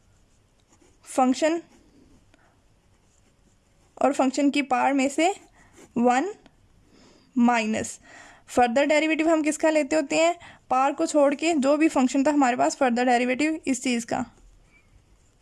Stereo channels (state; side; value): identical; both; correlation 1.00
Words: फंक्शन और फंक्शन की पावर में से 1 माइनस फर्दर डेरिवेटिव हम किसका लेते होते हैं, पावर को छोड़ के जो भी फंक्शन था हमारे पास फर्दर डेरिवेटिव इस चीज़ का।